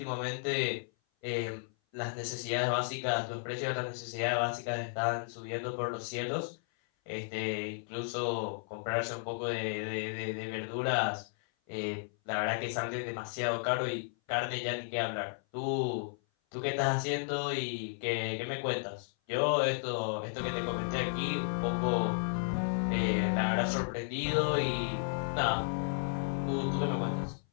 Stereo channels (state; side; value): silent; right; 55 dB below the other